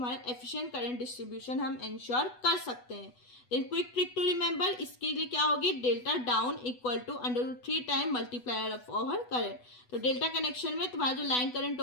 एफिशिएंट करंट डिस्ट्रीब्यूशन हम इंश्योर कर सकते हैं. Then quick trick to remember, इसके लिए क्या होगी, delta down equal to √3 time multiplier of over current. तो डेल्टा कनेक्शन में तुम्हारा जो लाइन करंट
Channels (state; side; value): late; right; 8.1 ms